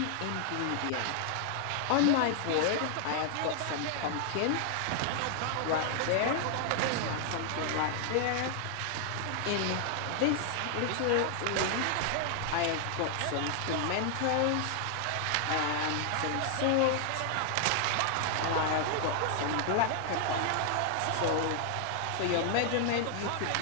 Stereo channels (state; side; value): different; both; correlation 0.00